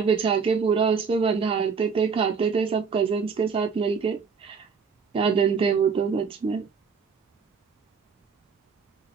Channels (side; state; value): left; quieter; 5.7 dB